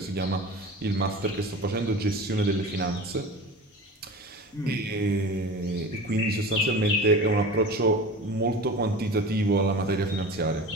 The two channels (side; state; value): both; normal; correlation 0.34